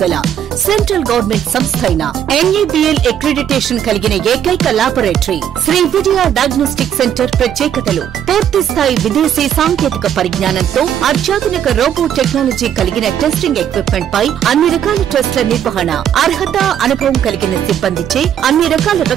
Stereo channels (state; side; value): quieter; left; 9.6 dB